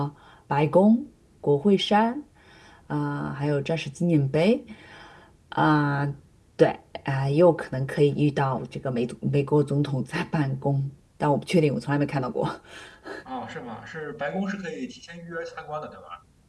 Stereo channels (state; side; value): identical; both; correlation 1.00